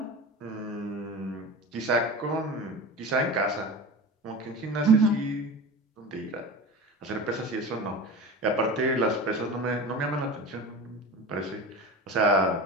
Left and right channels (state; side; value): normal; both; correlation 0.31